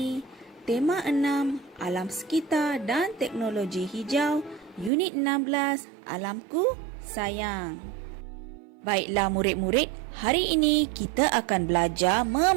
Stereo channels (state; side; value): drops out; left; at 4.9 s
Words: Tema 6, Alam Sekitar dan Teknologi Hijau, Unit 16, Alamku Sayang. Baiklah murid-murid, hari ini kita akan belajar